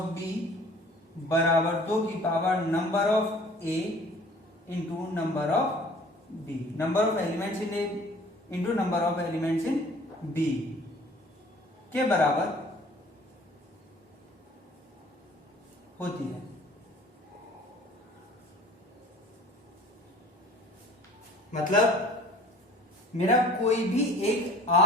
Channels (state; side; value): normal; both; correlation 0.50